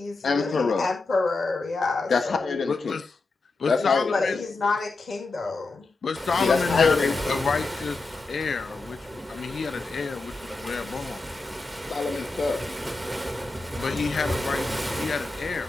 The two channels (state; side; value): quieter; right; 3.6 dB